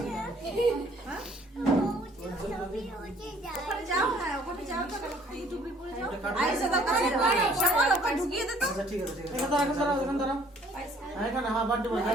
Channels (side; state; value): both; normal; correlation 0.59